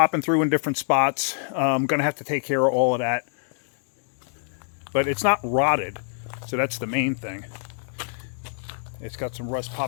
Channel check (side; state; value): right; silent; digital silence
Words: through in different spots. I'm going to have to take care of all of that. But it's not rotted, so that's the main thing. It's got some rust